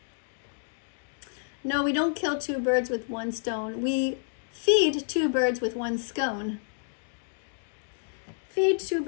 No, we don't kill two birds with one stone. We feed two birds with one scone. Feed two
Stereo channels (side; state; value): right; silent; digital silence